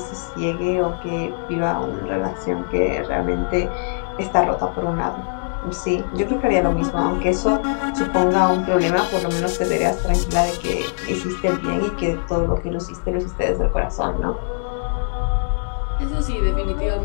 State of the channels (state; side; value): silent; right; digital silence